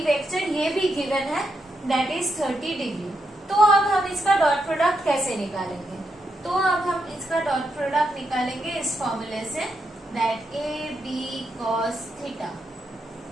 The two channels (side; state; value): both; normal; correlation 0.82